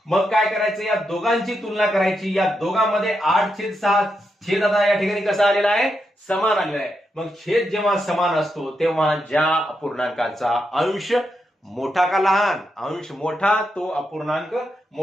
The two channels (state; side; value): normal; both; correlation 0.84